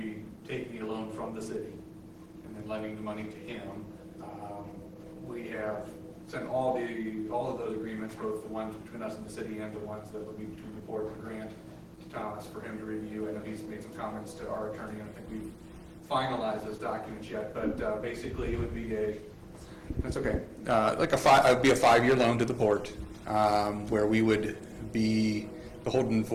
taking a loan from the city and then lending the money to him. We have sent all of those agreements, both the ones between us and the city and the ones that would be between the board and the grant, to Thomas for him to review. I know he's made some comments to our attorney. I don't think we've finalized those documents yet, but basically it would be that's okay. It would be a 5-year loan to the port, where we would be beholden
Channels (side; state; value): both; identical; correlation 1.00